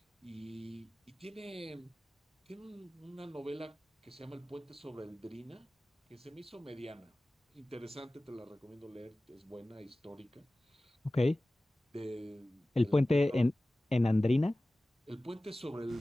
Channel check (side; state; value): both; normal; correlation 0.97